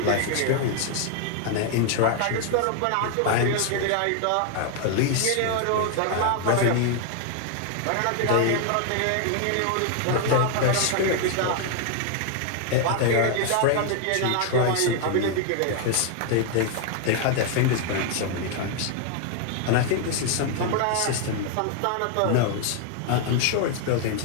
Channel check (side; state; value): both; different; correlation 0.00